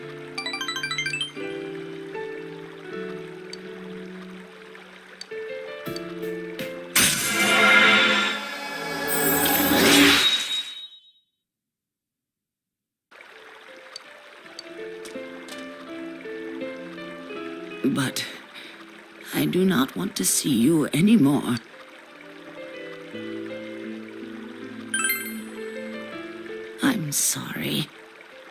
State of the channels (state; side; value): identical; both; correlation 1.00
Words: But I do not want to see you anymore. I'm sorry.